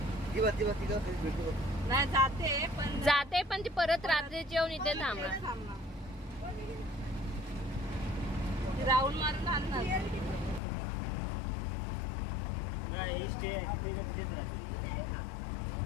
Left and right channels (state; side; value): drops out; right; at 10.6 s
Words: जाते पण ती परत रात्रीची येऊन इथे थांबणार. राऊंड मारून आणणार.